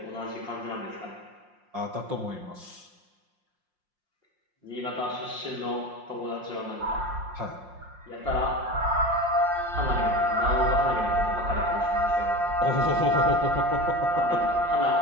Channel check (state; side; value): late; left; 5.6 ms